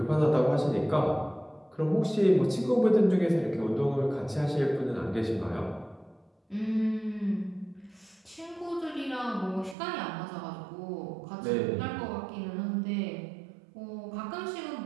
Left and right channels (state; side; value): drops out; left; at 9.8 s